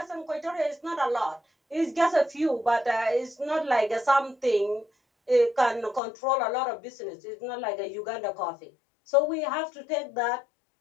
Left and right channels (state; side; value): drops out; right; at 6.0 s